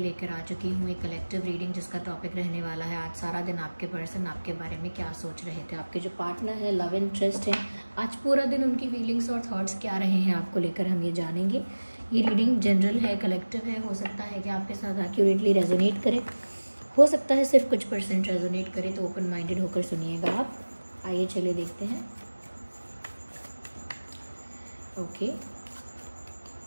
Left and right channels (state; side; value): inverted; both; correlation -1.00